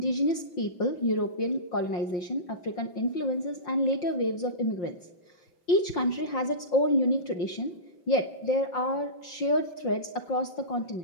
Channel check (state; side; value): late; right; 5.7 ms